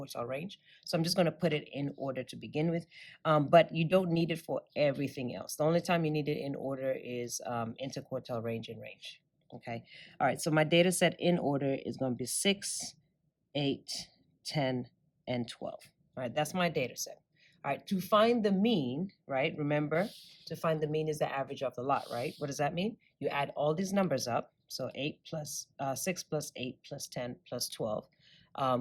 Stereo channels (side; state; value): both; identical; correlation 1.00